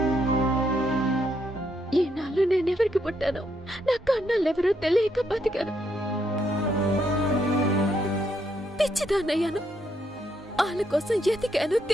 ఈనాళ్ళు నేనెవరికి పుట్టానో నా కన్నాళ్ళెవరో తెలియక బతికాను. పిచ్చిదాన్నయ్యాను. ఆ వాళ్ళ కోసం ఎతికాను,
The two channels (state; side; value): normal; both; correlation 0.75